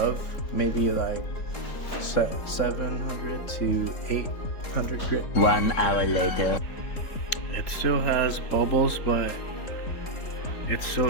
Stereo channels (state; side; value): late; right; 3.8 ms